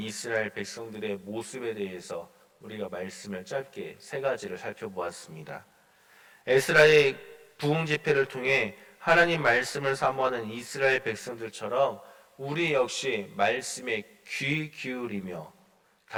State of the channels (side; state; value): both; identical; correlation 1.00